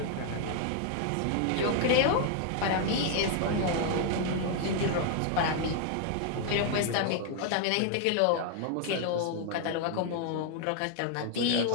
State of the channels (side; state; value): both; different; correlation 0.00